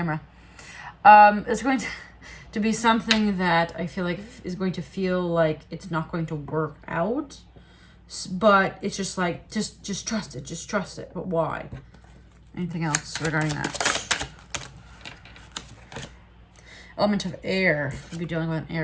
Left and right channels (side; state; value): both; identical; correlation 1.00